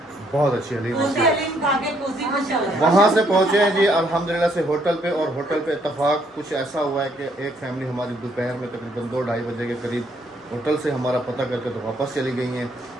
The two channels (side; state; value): both; normal; correlation 0.69